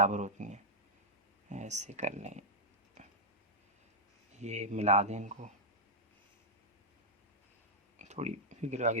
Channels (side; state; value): both; normal; correlation -0.07